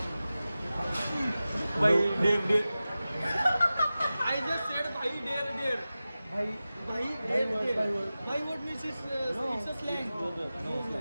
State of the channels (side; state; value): both; inverted; correlation -0.95